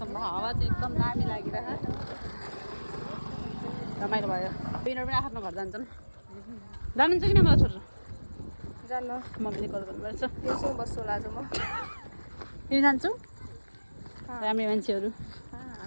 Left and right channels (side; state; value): both; inverted; correlation -1.00